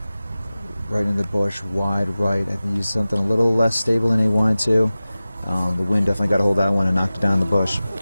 right in the bush, wide right. I think he used something a little less stable than he wanted to. The wind definitely got a hold of that one and knocked it down in the bush.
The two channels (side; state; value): both; inverted; correlation -0.96